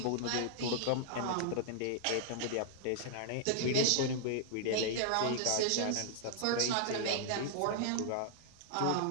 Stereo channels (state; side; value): different; both; correlation -0.01